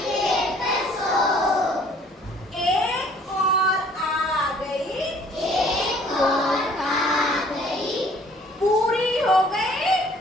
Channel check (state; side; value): normal; both; correlation 0.56